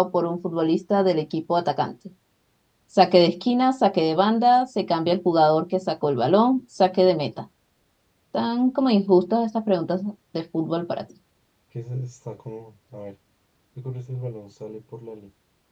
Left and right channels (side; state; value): both; identical; correlation 1.00